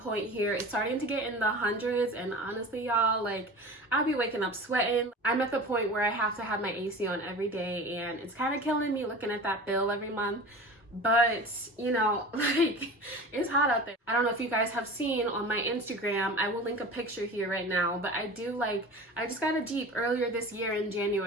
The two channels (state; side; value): normal; both; correlation 0.36